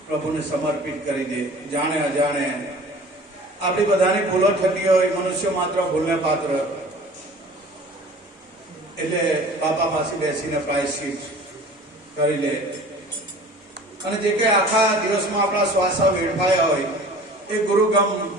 પ્રભુને સમર્પિત કરી દે. જાણે અજાણે આપણી બધાની ભૂલો થતી હોય, મનુષ્ય માત્ર ભૂલને પાત્ર, એટલે બાપા પાસે બેસીને પ્રાયશ્ચિત કરી લે. અને જે કઈ આખા દિવસમાં આપણા શ્વાસા વેડફાયા હોય એ ગુરુગમ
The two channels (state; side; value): normal; both; correlation 0.44